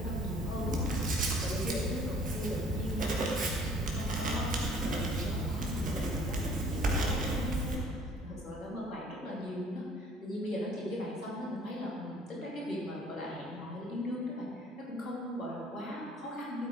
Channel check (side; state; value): both; normal; correlation 0.55